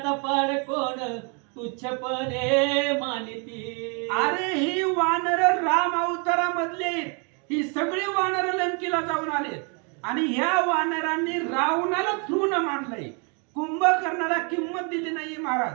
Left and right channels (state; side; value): quieter; left; 35.9 dB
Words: पाड कोण, तुच्छपणे मानिती. अरे ही वानर राम अवतारामधले आहेत. ही सगळी वानर लंकेला जाऊन आले आणि ह्या वानरांनी रावणाला तृण मानलंय. कुंभकर्णाला किंमत दिली नाही